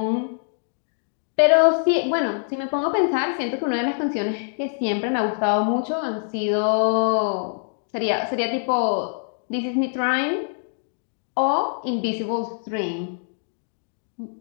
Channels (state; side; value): silent; right; digital silence